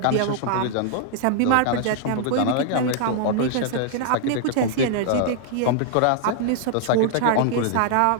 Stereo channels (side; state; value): both; different; correlation -0.01